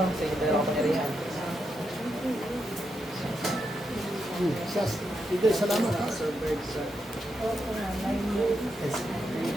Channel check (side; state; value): both; normal; correlation 0.83